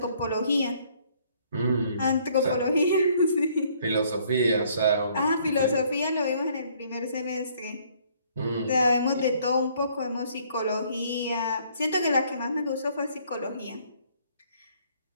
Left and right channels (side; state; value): both; inverted; correlation -0.63